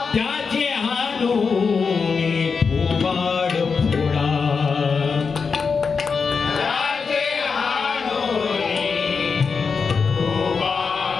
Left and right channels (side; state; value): right; quieter; 5.3 dB